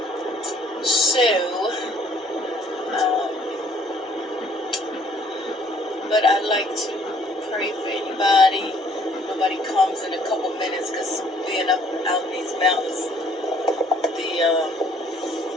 But I'd like to pray for anybody. Nobody comes in a couple minutes because being out in these mountains,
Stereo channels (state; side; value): normal; both; correlation 0.60